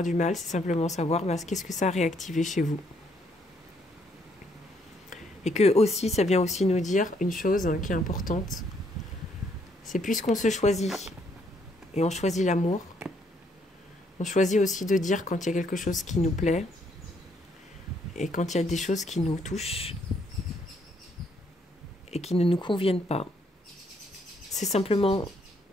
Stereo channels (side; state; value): both; normal; correlation 0.71